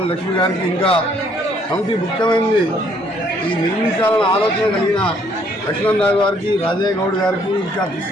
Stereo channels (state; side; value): normal; both; correlation 0.65